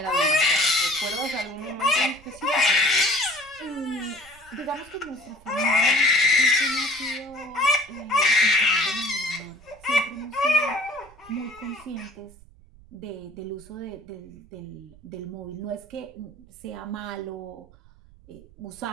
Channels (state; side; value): noise; right; rumble, 24 dB below the sound